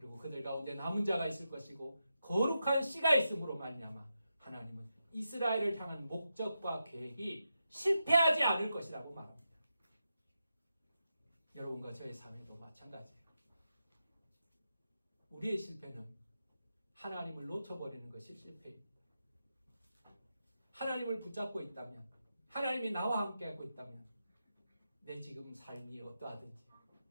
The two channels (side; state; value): both; inverted; correlation -0.88